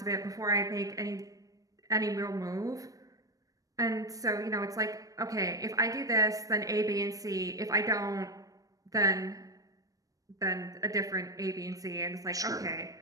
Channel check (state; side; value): late; left; 0.17 ms